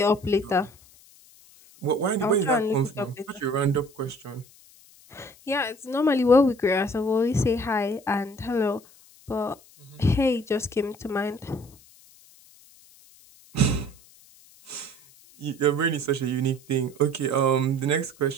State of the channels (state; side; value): noise; left; hiss, 26 dB below the sound